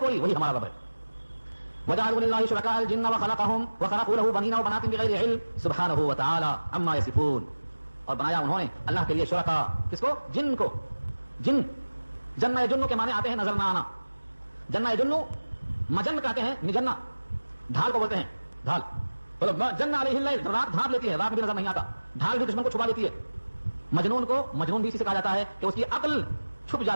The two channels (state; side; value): inverted; both; correlation -1.00